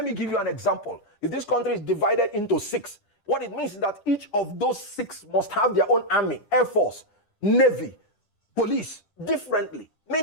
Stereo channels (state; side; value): late; right; 9.9 ms